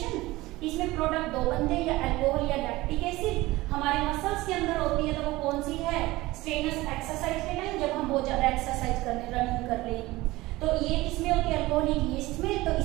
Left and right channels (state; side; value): quieter; left; 19.4 dB